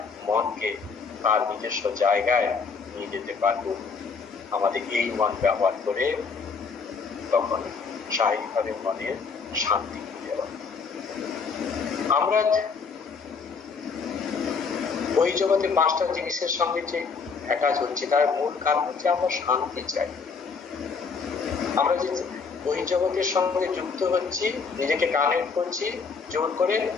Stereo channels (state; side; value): quieter; right; 5.2 dB